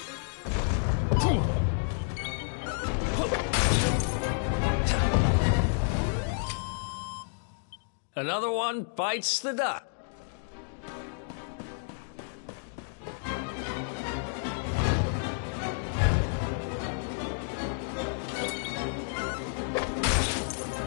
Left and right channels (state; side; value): silent; right; digital silence